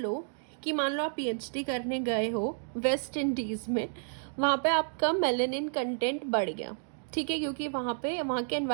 कि मान लो आप पीएचडी करने गए हो वेस्ट इंडीज़ में, वहाँ पे आपका मेलेनिन कंटेंट बढ़ गया, ठीक है, क्योंकि वहाँ के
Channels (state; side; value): silent; left; digital silence